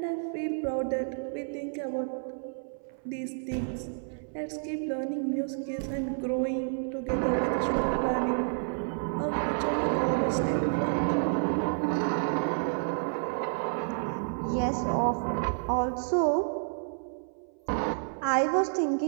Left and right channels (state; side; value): silent; left; 58 dB below the other